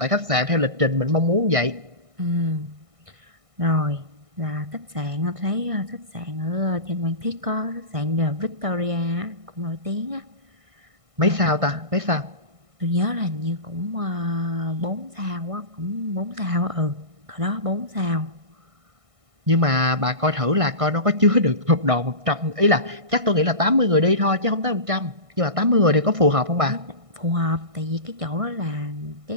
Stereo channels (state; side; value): late; left; 1.6 ms